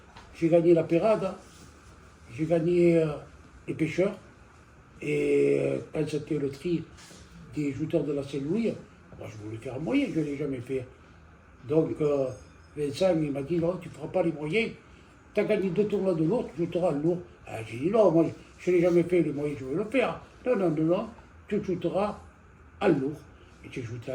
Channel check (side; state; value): both; identical; correlation 1.00